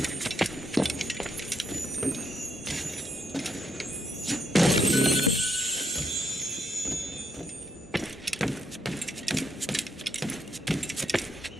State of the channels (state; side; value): normal; both; correlation 0.77